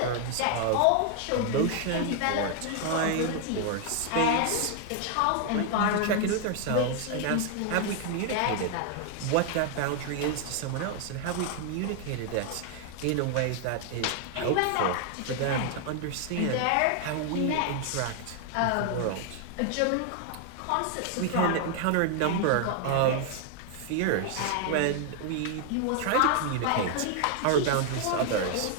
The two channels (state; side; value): different; both; correlation 0.00